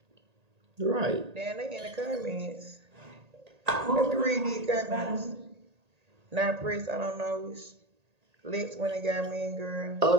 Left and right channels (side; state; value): left; late; 1.8 ms